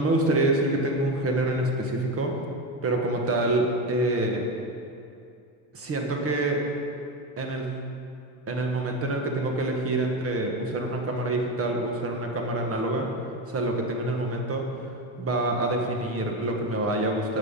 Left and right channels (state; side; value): normal; both; correlation 0.17